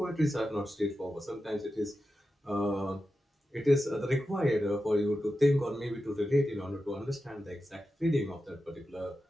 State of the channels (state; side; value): normal; both; correlation 0.91